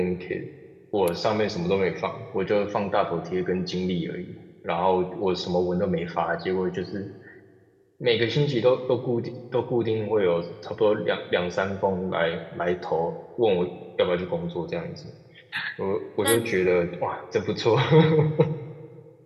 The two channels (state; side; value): identical; both; correlation 1.00